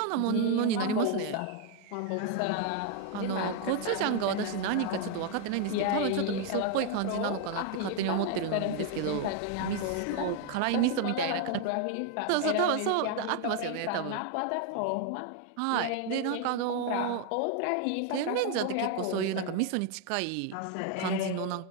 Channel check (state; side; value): different; both; correlation 0.00